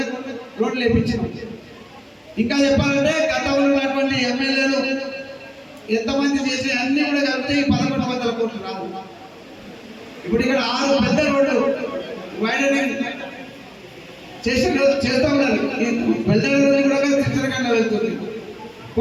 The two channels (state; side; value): identical; both; correlation 1.00